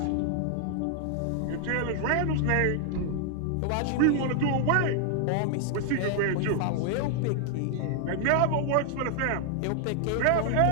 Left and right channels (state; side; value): different; both; correlation 0.00